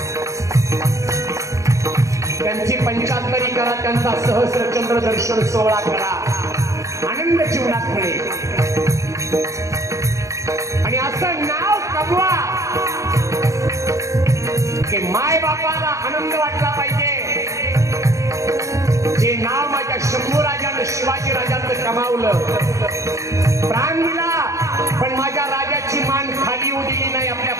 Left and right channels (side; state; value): left; late; 0.15 ms